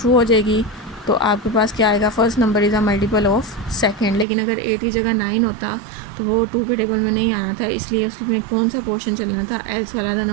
हो जाएगी तो आपके पास क्या आएगा, first number is a multiple of second. लेकिन अगर 8 की जगह 9 होता तो वो 2 के टेबल में नहीं आना था, इसलिए उसमें कौन सा पोर्शन चलना था, एल्स वाला, the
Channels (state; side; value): drops out; left; at 4.2 s